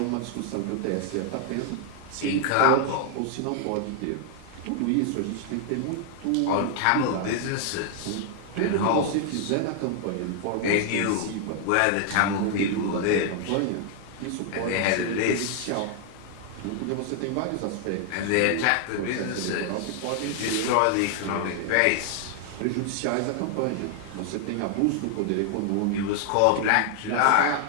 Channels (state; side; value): different; both; correlation 0.00